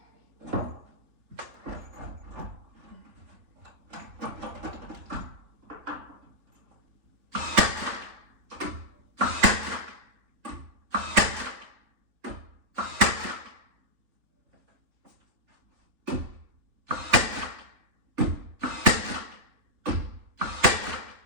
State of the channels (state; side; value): late; left; 3.7 ms